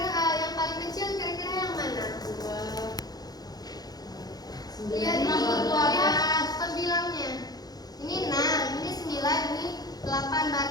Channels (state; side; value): late; right; 0.19 ms